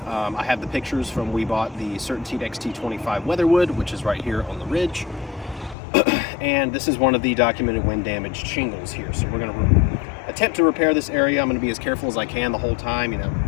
I have the pictures from we bought the CertainTeed XT25 Weatherwood, which is right here on the ridge. And this is one of the documented wind damaged shingles here. So we're going to attempt to repair this area. I'm going to be as careful as I can the whole time,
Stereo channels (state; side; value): drops out; right; at 5.8 s